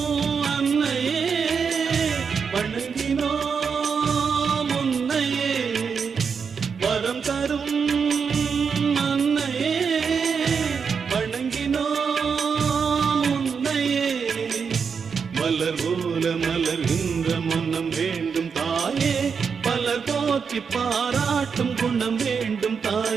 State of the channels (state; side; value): quieter; left; 6.1 dB